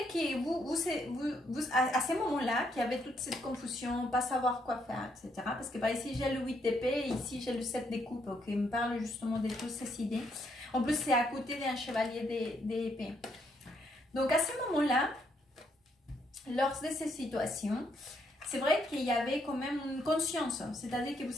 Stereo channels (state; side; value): normal; both; correlation 0.73